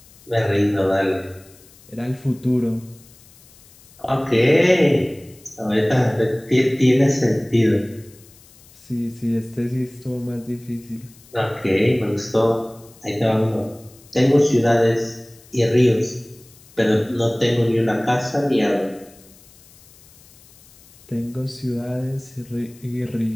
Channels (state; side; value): noise; left; hiss, 26 dB below the sound